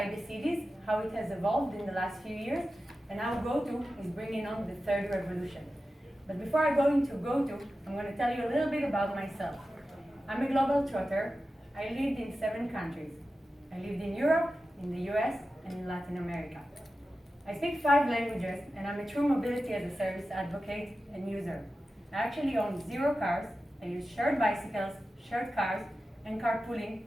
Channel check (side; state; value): both; normal; correlation 0.93